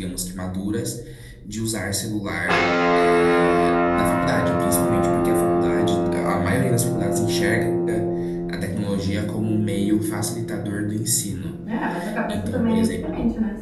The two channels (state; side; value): identical; both; correlation 1.00